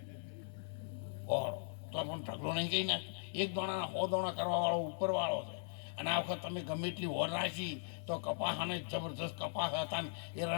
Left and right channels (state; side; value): silent; right; digital silence